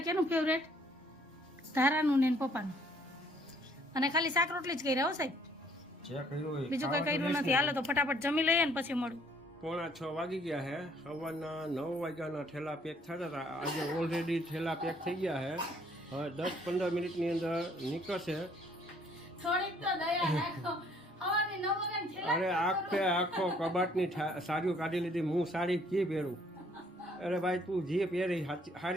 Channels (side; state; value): both; normal; correlation 0.62